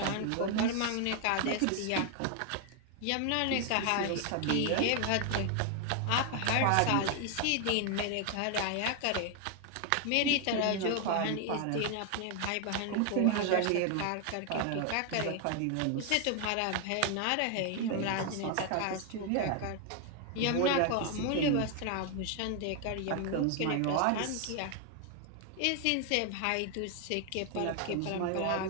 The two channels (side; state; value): both; different; correlation 0.00